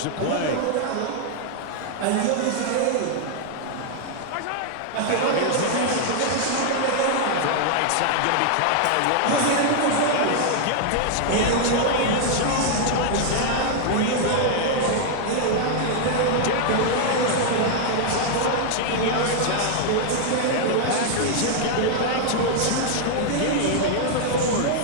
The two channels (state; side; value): different; both; correlation 0.00